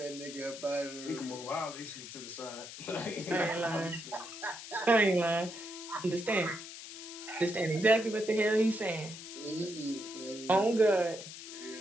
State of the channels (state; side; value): noise; left; hiss, 12 dB below the sound